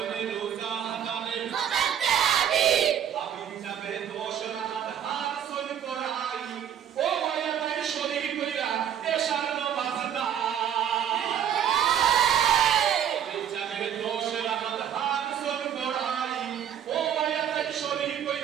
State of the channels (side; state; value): left; quieter; 9.4 dB